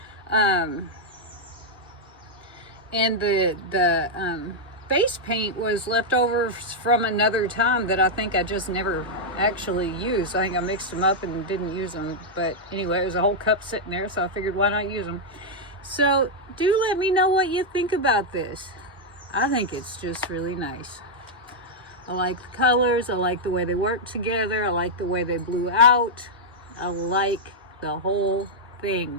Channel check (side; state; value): both; normal; correlation -0.03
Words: And the base paint was leftovers from another time that I think I just never actually used. I think I mixed them up and didn't use them. But anyway, there's a whole cup sitting there, so I figured why not use them. So do let me know what you think about this. I think it's just really nice. I like the colors. I like the way they work together. I like the way they blew out. I like the whole